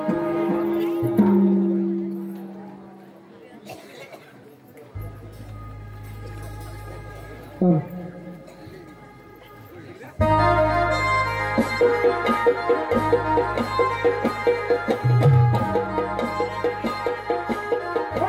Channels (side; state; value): both; identical; correlation 1.00